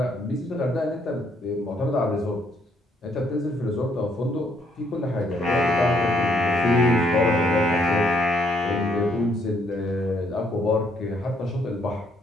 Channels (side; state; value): both; normal; correlation 0.70